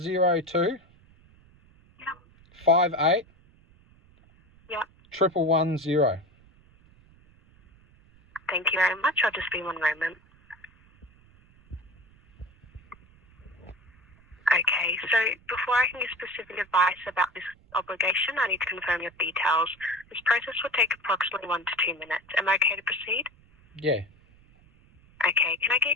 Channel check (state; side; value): noise; right; rumble, 28 dB below the sound